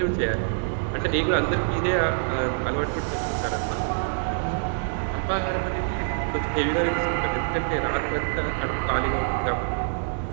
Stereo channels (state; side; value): silent; left; digital silence